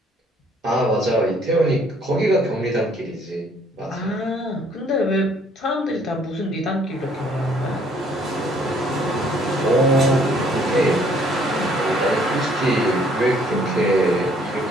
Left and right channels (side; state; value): both; normal; correlation 0.62